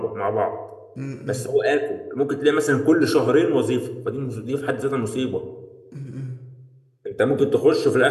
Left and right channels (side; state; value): both; identical; correlation 1.00